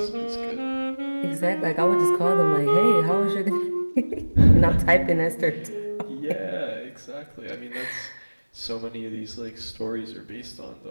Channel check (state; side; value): inverted; both; correlation -1.00